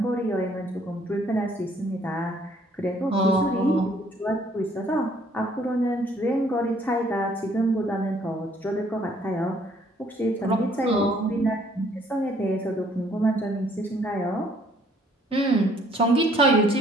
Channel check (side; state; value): both; normal; correlation 0.62